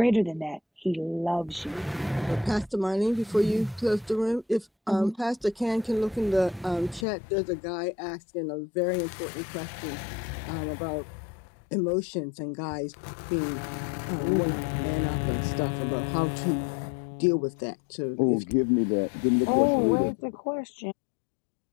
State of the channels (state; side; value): drops out; right; at 7.1 s